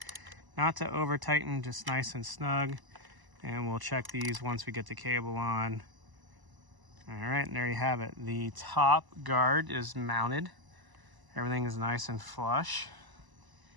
not to over tighten, just nice and snug. And we'll check these once we get the cable on. All right, and there you have it. The top guard is mounted. Everything is nice and flush,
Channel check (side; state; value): left; late; 1.0 ms